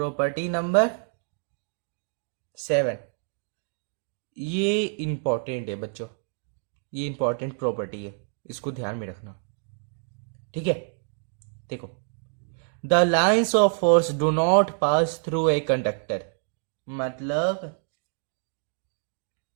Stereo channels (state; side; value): silent; left; 60 dB below the other